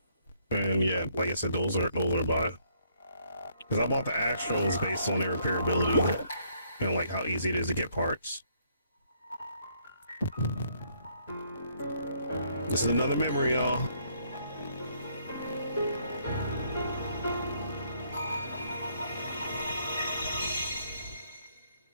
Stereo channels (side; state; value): both; inverted; correlation -0.68